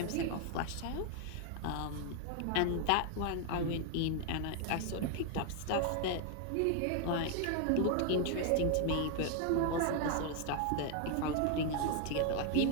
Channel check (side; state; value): both; different; correlation 0.00